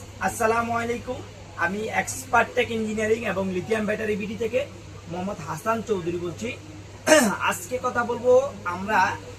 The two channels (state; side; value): identical; both; correlation 1.00